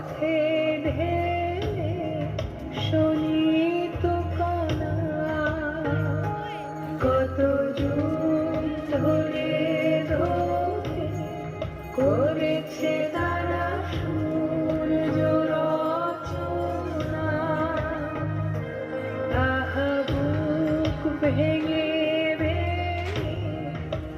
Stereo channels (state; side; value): identical; both; correlation 1.00